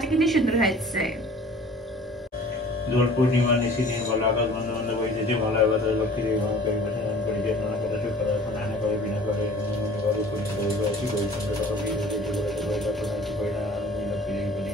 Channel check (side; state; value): both; normal; correlation 0.48